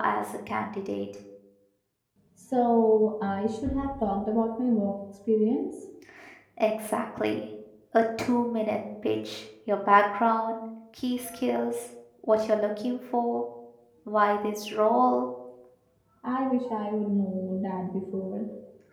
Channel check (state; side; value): identical; both; correlation 1.00